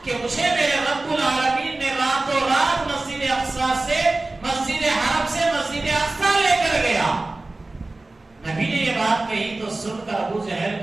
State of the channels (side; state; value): left; quieter; 3.0 dB